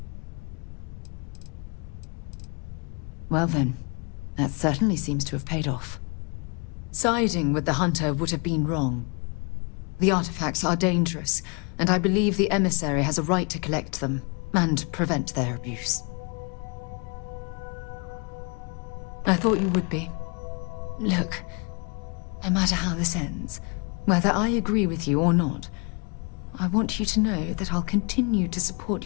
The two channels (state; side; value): quieter; right; 33.5 dB